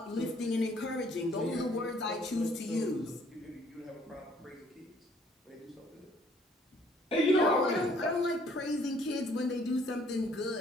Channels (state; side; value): normal; both; correlation 0.61